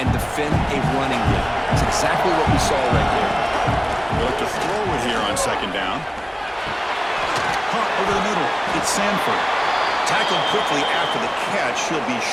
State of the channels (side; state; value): both; identical; correlation 1.00